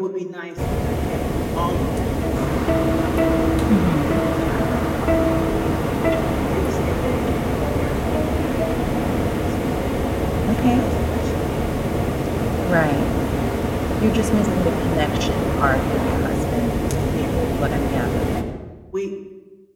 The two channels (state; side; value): identical; both; correlation 1.00